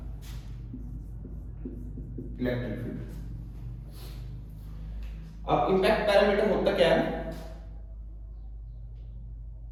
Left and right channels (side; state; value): both; identical; correlation 1.00